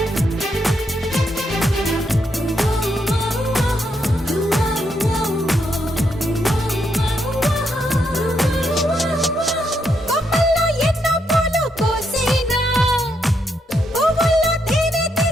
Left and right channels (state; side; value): normal; both; correlation 0.78